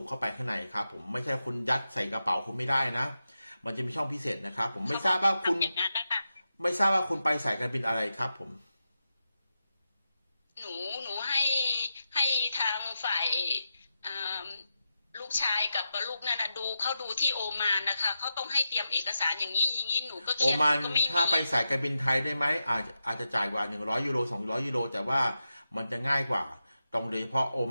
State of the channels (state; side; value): inverted; both; correlation -0.89